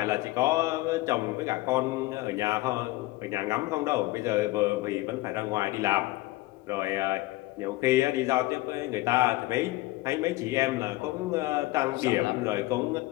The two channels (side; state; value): right; quieter; 19.1 dB